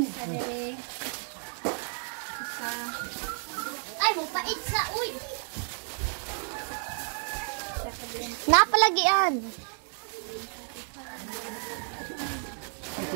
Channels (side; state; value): left; silent; 55 dB below the other